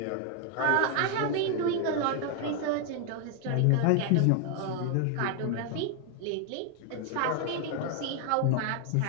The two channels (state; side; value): different; both; correlation 0.01